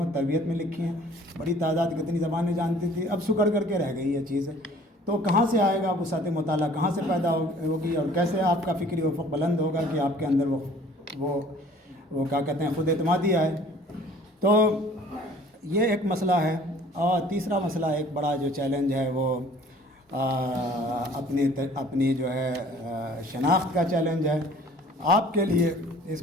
و تربیت میں لکھی ہیں، بڑی تعداد کتنی زبانیں جانتی تھی، اب سکڑ کر کے رہ گئی یہ چیز۔ تو کہاں سے آئے گا وسعت مطالعہ، کہاں سے پیدا ہوگی، اور کیسے آپ کا فکری افق بلند ہوگا کہ آپ کے اندر وہ کیا کہتے ہیں، خود اعتمادی آئے۔ تو یہ ایک مسئلہ ہے۔ اور تیسرا مسئلہ، ایک بڑا جو چیلنج ہے وہ اپنی جو ہے شناخت کا چیلنج ہے۔ آپ کے لیے اس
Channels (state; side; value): normal; both; correlation 0.52